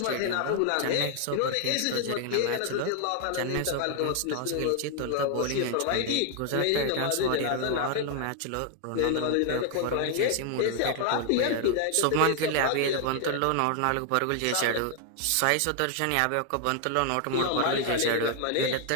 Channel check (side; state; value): both; different; correlation 0.00